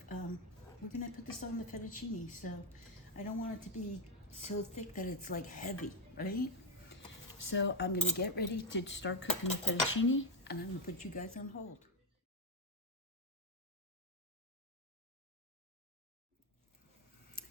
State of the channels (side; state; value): both; normal; correlation 0.05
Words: we're gonna put this on the fettuccine, so I don't want it to be so thick that it's like heavy, right? So I'm gonna get ready to start cooking the fettuccine, and I'm gonna put you guys on hold.